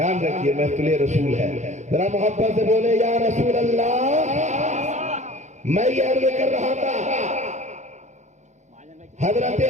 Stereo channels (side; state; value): left; late; 0.34 ms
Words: رکھیے، محفل رسول ہے، ذرا محبت سے بولے یا رسول اللہ۔ میں یہ عرض کر رہا تھا، حضرت